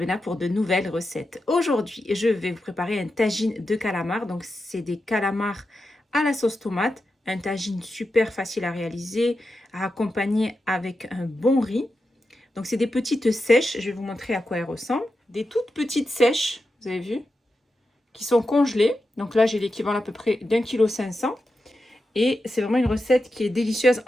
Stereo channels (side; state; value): both; normal; correlation 0.89